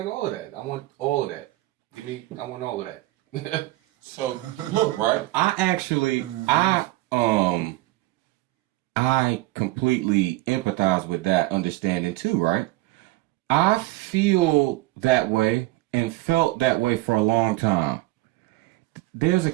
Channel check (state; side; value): quieter; left; 18.9 dB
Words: all of that. I want all of that. I want all of that. So look, right? I completely empathize with that understanding too, right? I feel that way and felt that way for a long time. There's a